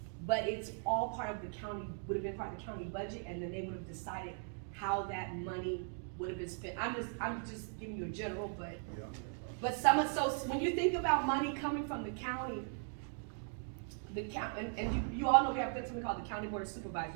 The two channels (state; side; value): silent; left; 52 dB below the other